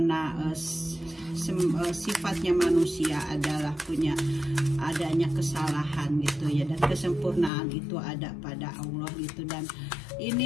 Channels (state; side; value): drops out; right; at 7.5 s